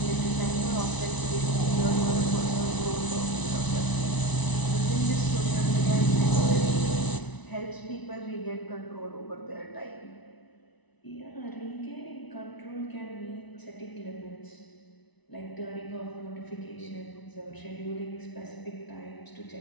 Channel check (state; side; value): late; right; 1.0 ms